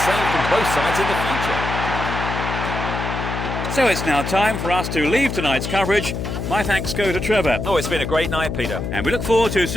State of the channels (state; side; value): noise; left; hum, 4 dB below the sound